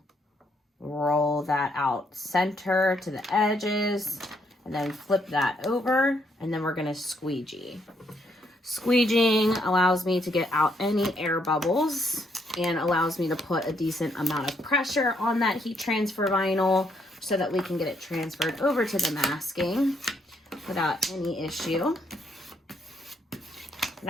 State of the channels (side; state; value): both; normal; correlation 0.73